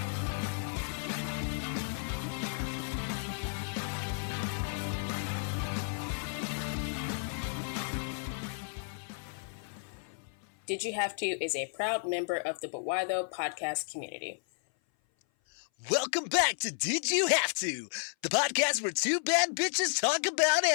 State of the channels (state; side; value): silent; right; 56 dB below the other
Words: Did You Have To is a proud member of the Buwaido podcast community. Welcome back to Did You Have To, the podcast where two bad bitches talk about